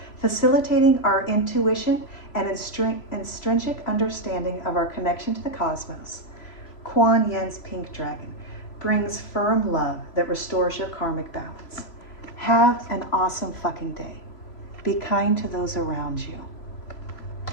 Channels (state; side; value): late; right; 3.0 ms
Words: facilitating our intuition and intrinsic understanding of our connection to the cosmos. Kuan Yin's pink dragon brings firm love that restores your karmic balance. Have an awesome fucking day. Be kind to those around you.